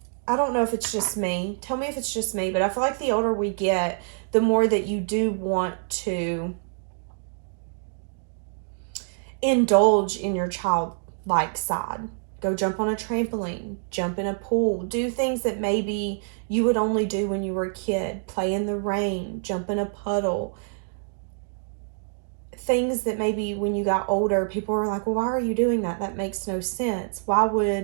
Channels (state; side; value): silent; left; 61 dB below the other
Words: I don't know if it's just me. Tell me if it's just me, but I feel like the older we get, the more that you do want to indulge in your childlike side. Go jump on a trampoline, jump in a pool, do things that maybe you would only do when you were a kid. Play in the rain, jump in a puddle. Things that maybe when you got older, people were like, well, why are you doing that? That makes no sense. Why